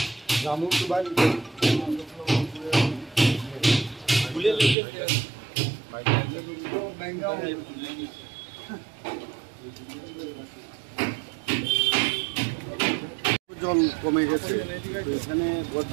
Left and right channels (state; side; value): drops out; left; at 4.8 s